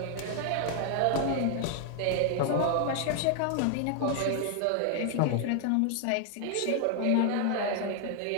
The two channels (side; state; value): both; different; correlation 0.00